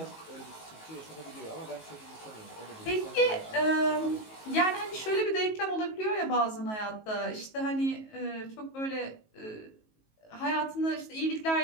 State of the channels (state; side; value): late; right; 19 ms